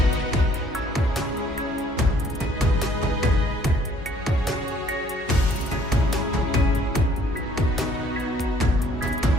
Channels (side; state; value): both; normal; correlation 0.60